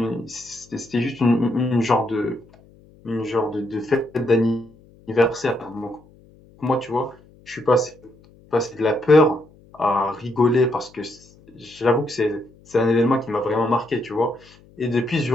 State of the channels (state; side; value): noise; left; hum, 27 dB below the sound